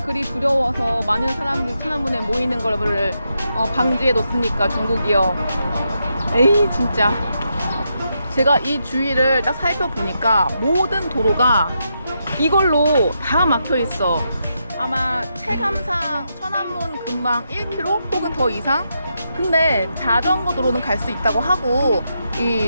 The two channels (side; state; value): both; inverted; correlation -0.83